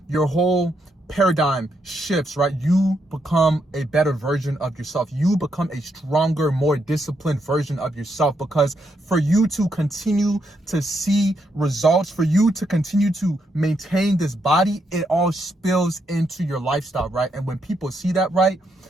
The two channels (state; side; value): normal; both; correlation 0.79